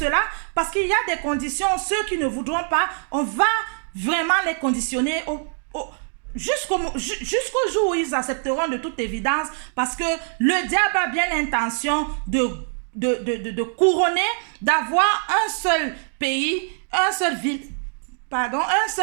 parce qu'il y a des conditions. Ceux qui ne voudront pas, on va vraiment les conditionner jusqu'au jour où ils accepteront de toute évidence parce que le diable a bien l'intention de couronner, d'avoir un seul pays, un seul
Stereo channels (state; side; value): silent; left; 63 dB below the other